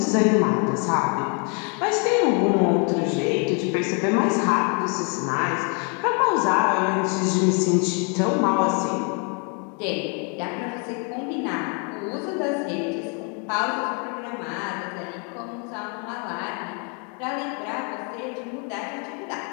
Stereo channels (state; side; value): quieter; right; 37.3 dB